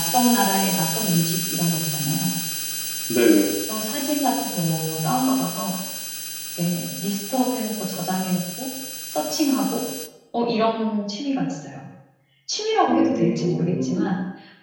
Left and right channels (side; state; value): both; identical; correlation 1.00